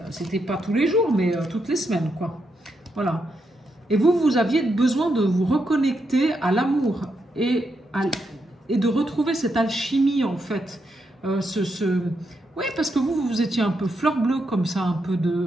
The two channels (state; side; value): normal; both; correlation 0.82